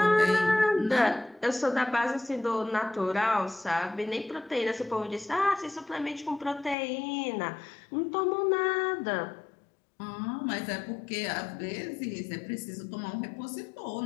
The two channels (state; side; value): drops out; right; at 6.8 s